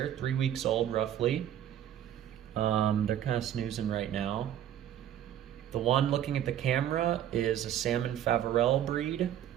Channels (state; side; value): quieter; left; 10.9 dB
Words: 3 weeks old, roughly. They're kind of snoozing right now. The one looking at the camera is a salmon Faverell breed.